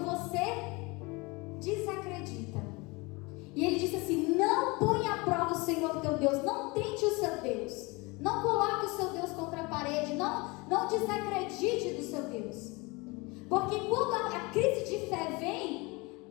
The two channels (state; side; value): quieter; right; 25.7 dB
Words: você desacredita. E ele disse assim: não ponha à prova o Senhor teu Deus, não tente o seu Deus, não coloque o seu Deus contra a parede, não desacredite do seu Deus. Porque quando a crise de fé